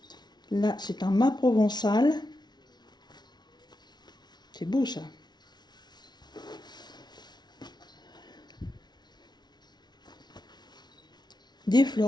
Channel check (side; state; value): right; late; 0.20 ms